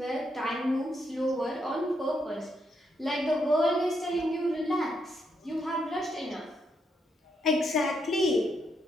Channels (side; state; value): both; normal; correlation 0.79